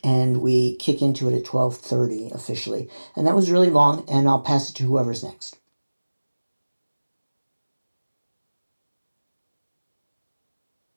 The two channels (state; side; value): inverted; both; correlation -1.00